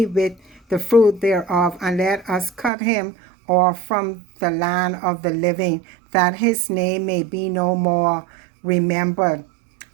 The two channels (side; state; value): left; drops out; at 2.7 s